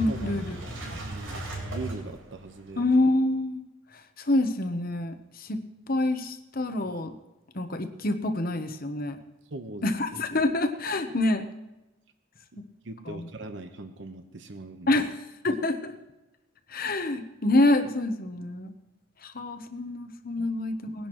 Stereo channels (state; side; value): normal; both; correlation 0.64